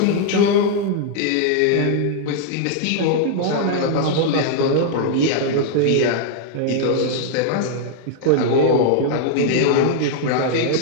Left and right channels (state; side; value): different; both; correlation 0.00